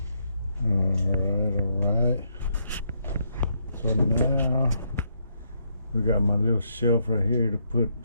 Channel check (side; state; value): both; inverted; correlation -0.76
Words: All right. So now we got my little shelf right here to put